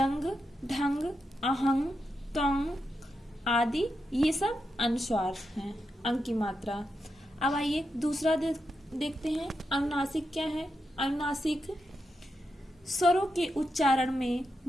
ढंग, अहंग, त्वंग आदि ये सब अनुस्वार हैं, अंग की मात्रा। अब आइए दूसरा देखते हैं। अनुनासिक क्या है? अनुनासिक स्वरों के उच्चारण में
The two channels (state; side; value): normal; both; correlation 0.86